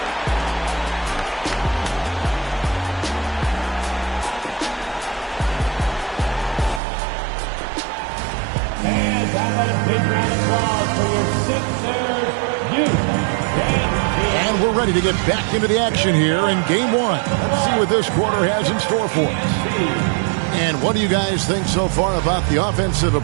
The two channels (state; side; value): drops out; left; at 6.8 s